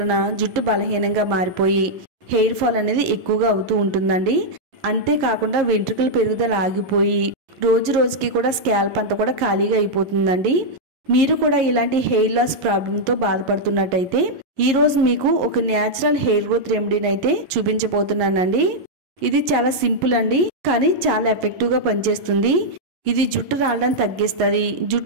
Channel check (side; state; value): left; late; 11 ms